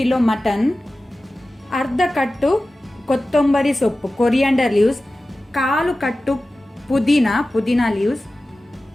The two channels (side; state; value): both; normal; correlation 0.95